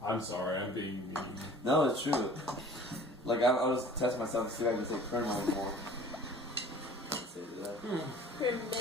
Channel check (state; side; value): normal; both; correlation 0.47